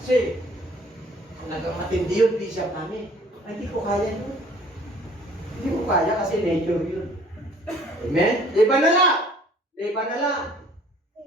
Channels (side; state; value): both; normal; correlation 0.55